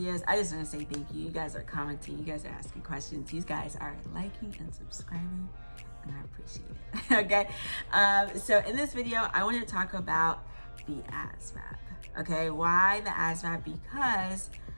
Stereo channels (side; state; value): both; inverted; correlation -1.00